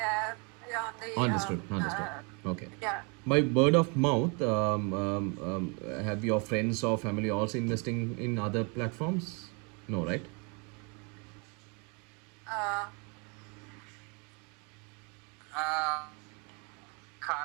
we are on the. Understood. Okay. Yeah. By word of mouth, have your friends or family also investing in other platforms? No, right?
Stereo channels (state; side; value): quieter; left; 32.9 dB